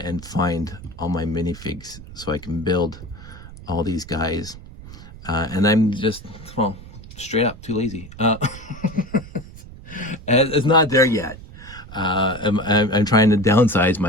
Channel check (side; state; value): right; noise; rumble, 16 dB below the sound